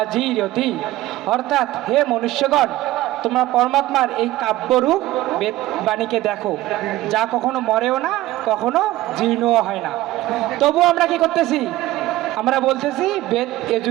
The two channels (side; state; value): left; quieter; 16.4 dB